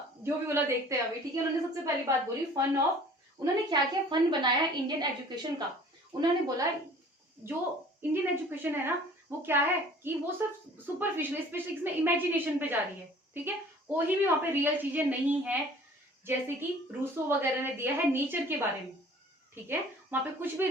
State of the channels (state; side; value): normal; both; correlation 0.50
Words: जो भी बोला देखते हैं अभी, ठीक है। उन्होंने सबसे पहली बात बोली फन ऑफ, उन्होंने क्या क्या फन बनाया इंडियन एजुकेशन का। उन्होंने बोला जो इंडियन एजुकेशन है ना वो क्या है कि वो सब सुपरफिशियल, स्पेशली इसमें इमेजिनेशन पे जा रही है, ठीक है। कोई भी वहां पे रियल चीजें नहीं है, जैसे कि रूसो वगैरह ने दिया है नेचर के बारे में, ठीक है, वहां पे कुछ भी